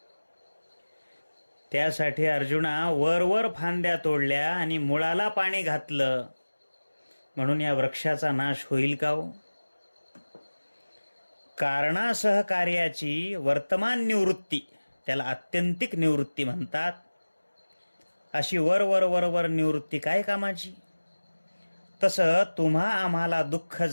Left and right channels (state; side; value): inverted; both; correlation -1.00